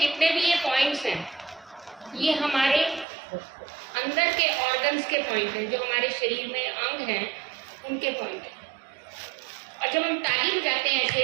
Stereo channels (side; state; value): left; drops out; at 3.1 s